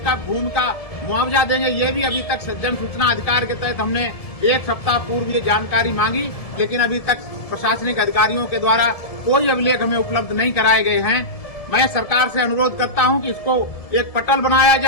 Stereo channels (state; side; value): late; right; 1.7 ms